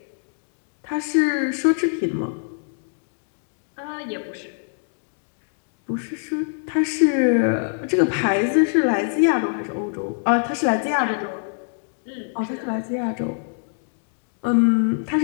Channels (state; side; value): silent; right; digital silence